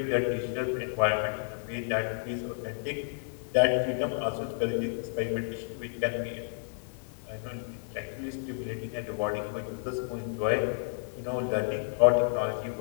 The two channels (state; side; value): silent; right; digital silence